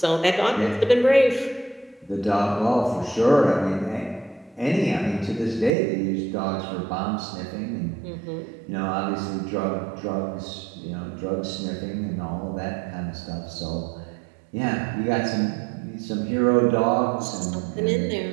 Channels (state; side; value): drops out; left; at 5.7 s